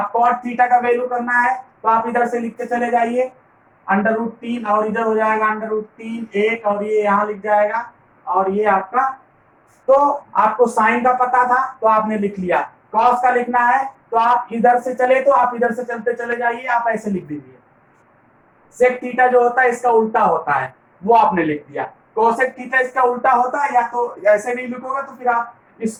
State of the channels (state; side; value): identical; both; correlation 1.00